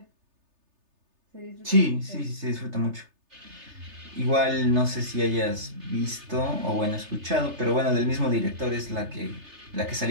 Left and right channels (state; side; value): late; left; 3.3 ms